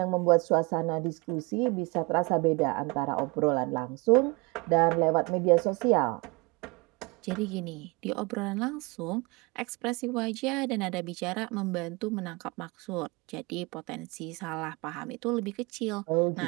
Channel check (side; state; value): left; quieter; 27.2 dB